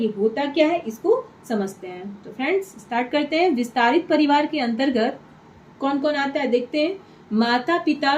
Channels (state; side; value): identical; both; correlation 1.00